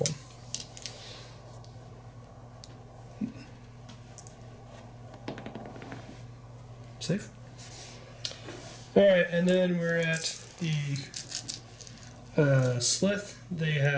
Safe. Alright, and then we're at the Slith, they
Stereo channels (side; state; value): both; identical; correlation 1.00